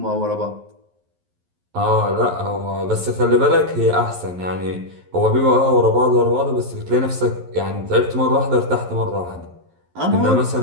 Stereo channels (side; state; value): left; late; 11 ms